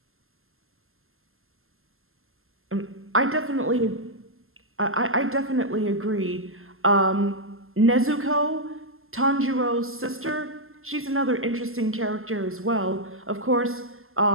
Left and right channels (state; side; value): late; left; 0.61 ms